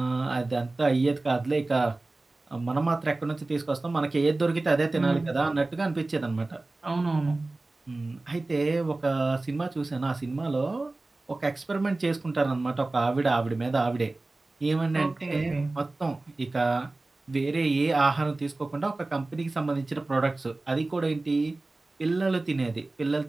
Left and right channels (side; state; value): left; quieter; 3.1 dB